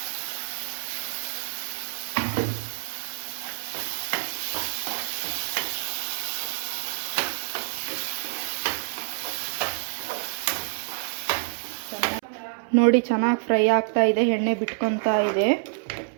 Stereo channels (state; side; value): silent; left; 60 dB below the other